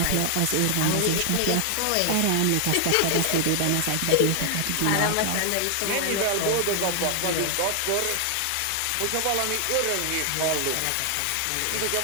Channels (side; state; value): both; different; correlation 0.00